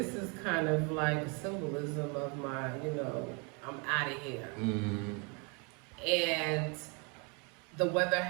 is kind of like a symbolism of my, you know, I'm out of here. And the weather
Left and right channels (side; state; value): left; quieter; 33.4 dB